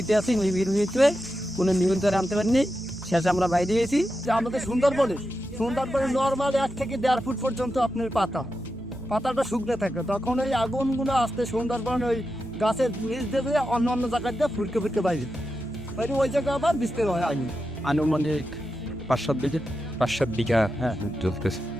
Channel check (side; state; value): both; normal; correlation 0.89